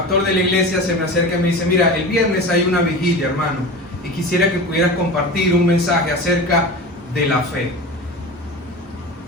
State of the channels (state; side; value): normal; both; correlation 0.31